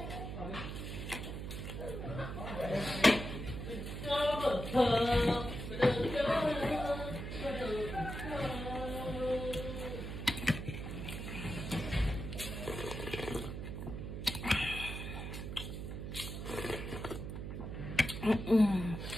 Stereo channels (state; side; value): noise; right; hum, 6 dB below the sound